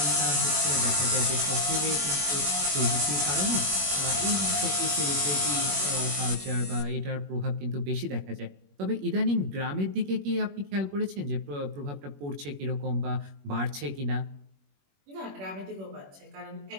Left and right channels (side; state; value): left; late; 21 ms